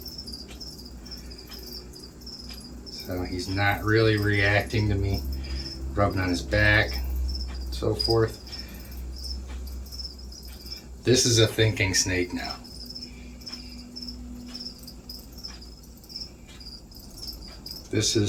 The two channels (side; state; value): both; identical; correlation 1.00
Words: So he's not really reacting to me rubbing on his back, so forth. This is a thinking snake now. This